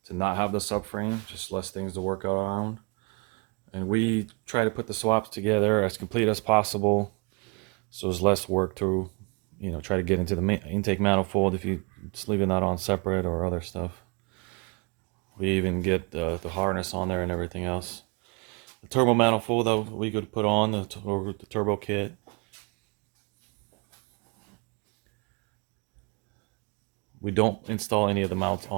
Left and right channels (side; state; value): left; quieter; 31.9 dB